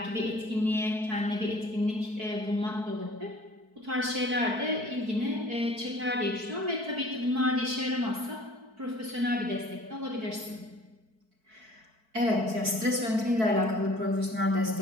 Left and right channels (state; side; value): late; left; 4.6 ms